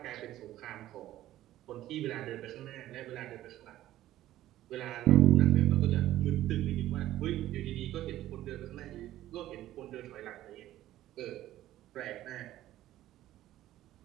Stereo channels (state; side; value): quieter; left; 14.1 dB